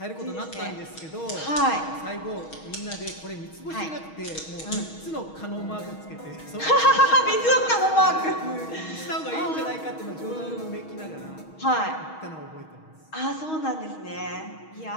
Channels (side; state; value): right; late; 6.3 ms